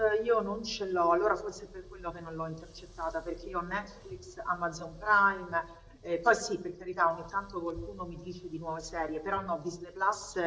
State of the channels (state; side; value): identical; both; correlation 1.00